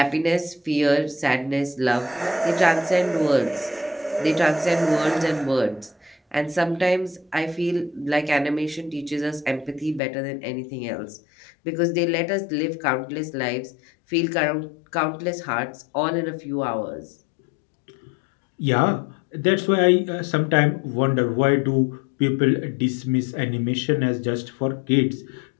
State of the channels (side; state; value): right; drops out; at 10.0 s